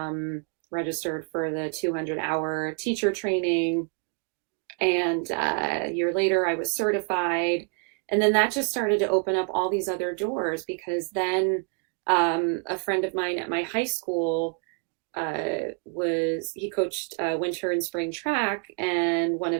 registered for the 200-hour teacher training. And a year later, I was certified. And then that just started to open up all these other doors, because then a friend of mine at my high school he coached winter and spring track, and one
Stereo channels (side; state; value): left; quieter; 38.9 dB